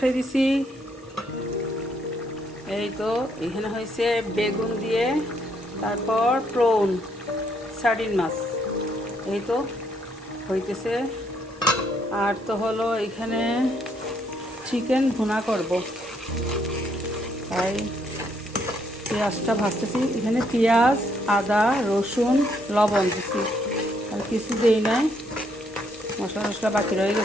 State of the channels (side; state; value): both; normal; correlation 0.72